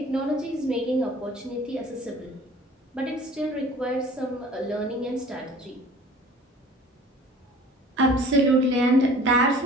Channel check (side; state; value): both; normal; correlation 0.47